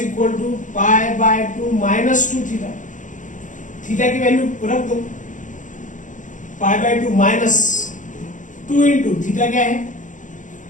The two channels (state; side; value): late; right; 0.37 ms